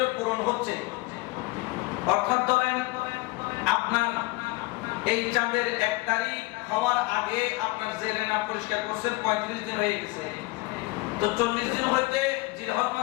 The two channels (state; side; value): quieter; right; 22.9 dB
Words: পূরণ হচ্ছে, অর্থাৎ ধরেন আপনার এই চাঁদের 1 তারিখ হওয়ার আগে আপনার জেরে নাফ পরিষ্কার করছেন, 35 দিন হয়ে গেছে। তো 40 দিন হইতে জিলহজ